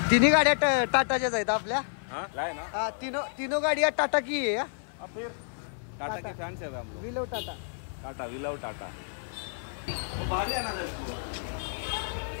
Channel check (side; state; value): right; silent; 57 dB below the other